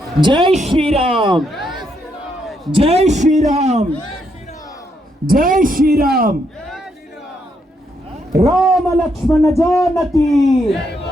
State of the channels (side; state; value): both; normal; correlation 0.77